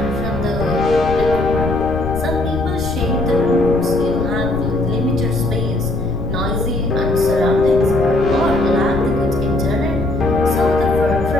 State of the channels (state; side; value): noise; left; rumble, 6 dB below the sound